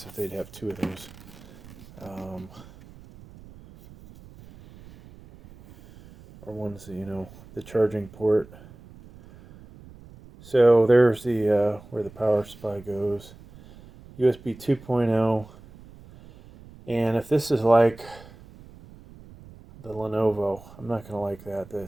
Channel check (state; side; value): noise; right; rumble, 21 dB below the sound